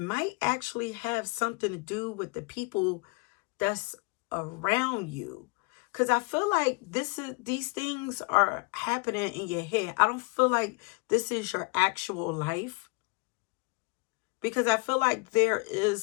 actually have something to do with the people that's around you. Because I feel like these things are happening in your head. I don't feel like this is your actual life. Because I feel like there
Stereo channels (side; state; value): right; quieter; 30.9 dB